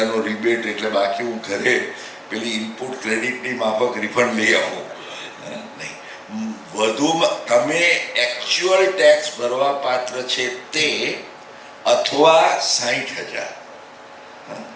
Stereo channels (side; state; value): both; identical; correlation 1.00